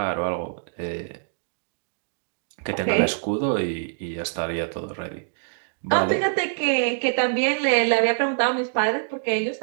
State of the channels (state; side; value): silent; left; digital silence